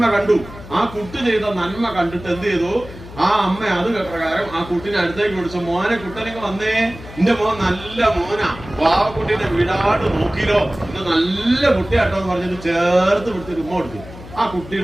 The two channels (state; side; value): noise; left; hum, 16 dB below the sound